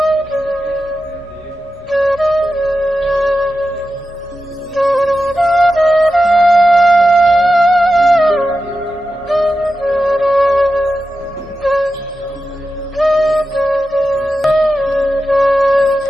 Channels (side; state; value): both; normal; correlation 0.91